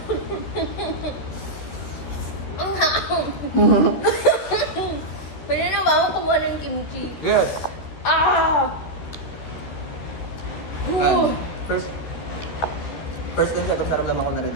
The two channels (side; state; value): right; late; 13 ms